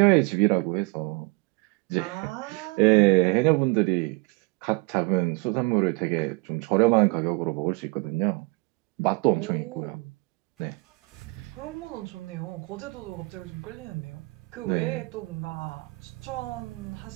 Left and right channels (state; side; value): quieter; left; 26.8 dB